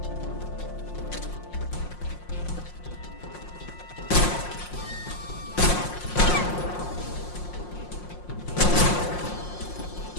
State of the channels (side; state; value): right; late; 5.6 ms